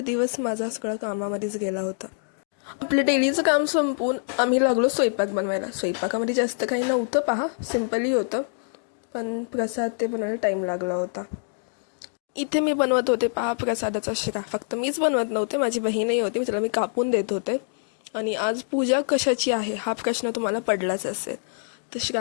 दिवस माझा सगळा कामामध्येच गेला होता. आपलं डेलीचं काम संपवून आम्ही लागलो स्वयंपाक बनवायला. स्वयंपाकामध्ये जास्त काही नव्हतं, पहा सिम्पली होतं, पण प्रसाद ते बनवायला टाईम लागला होता. इथे मी बनवत होते पहा प्रसादाचा शिरा. फक्त मीच बनवत नव्हते, माझी बहीणही होती, तिला मी कापून देत होते. आणि आज पूजा कशाची आहे हा प्रश्न तुम्हाला पडलाच असेल. तर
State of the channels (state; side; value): silent; right; digital silence